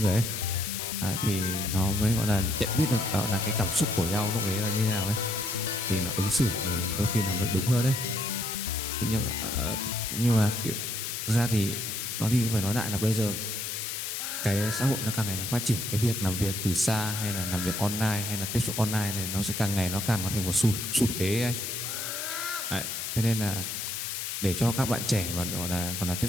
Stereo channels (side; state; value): left; noise; hiss, 4 dB below the sound